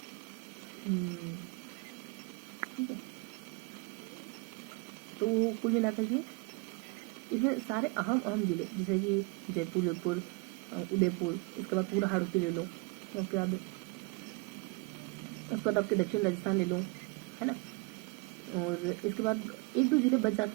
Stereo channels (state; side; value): quieter; left; 27.3 dB